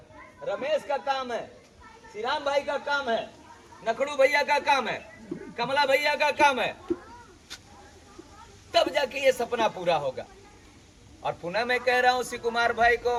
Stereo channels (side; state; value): both; identical; correlation 1.00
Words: रमेश का काम है, श्रीराम भाई का काम है, नखड़ू भैया का काम है, कमला भैया का काम है, तब जाके ये सपना पूरा होगा। और पुनः मैं कह रहा हूं शिव कुमार भाई को,